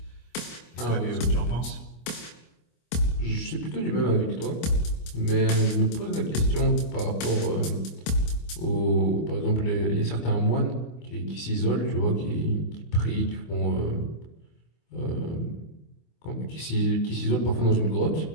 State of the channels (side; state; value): right; late; 25 ms